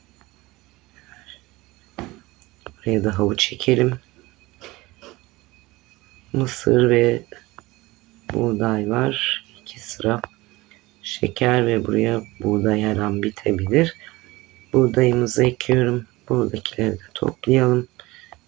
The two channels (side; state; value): left; quieter; 20.6 dB